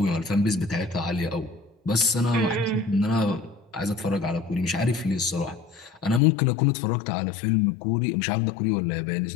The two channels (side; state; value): right; drops out; at 6.2 s